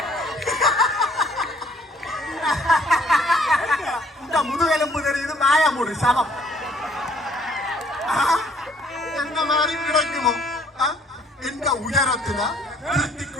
இந்த முதுகெலும்பு தெரியுது மாயமுடு சமம் என்ன மாதிரி கிடைக்குமோ? எந்த உயரத்துல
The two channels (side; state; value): both; normal; correlation 0.61